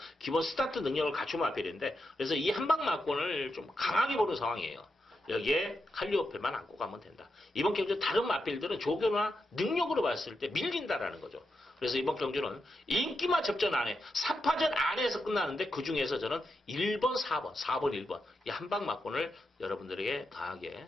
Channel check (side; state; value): both; normal; correlation 0.86